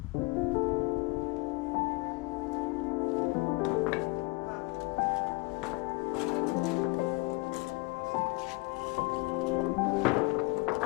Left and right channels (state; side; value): quieter; right; 25.9 dB